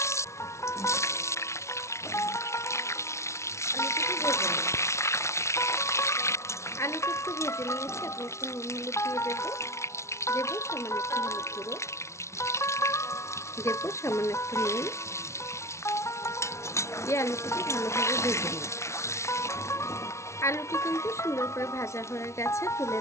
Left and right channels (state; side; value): late; right; 0.13 ms